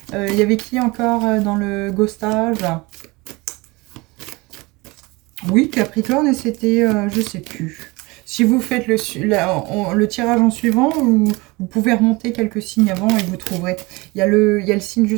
Il y avait qui encore dans le ghostage? Oui, Capricorne, et c'était... je sais plus. Si vous faites le tirage en suivant, vous pouvez remonter quelques signes avant et vous trouverez. Il y a le signe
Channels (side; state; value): left; quieter; 24.0 dB